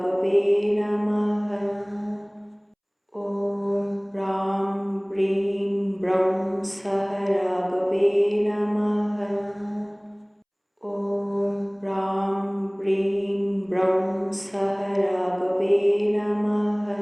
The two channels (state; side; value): identical; both; correlation 1.00